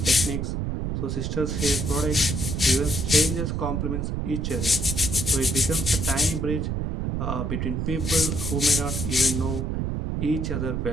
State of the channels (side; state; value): right; noise; rumble, 1 dB below the sound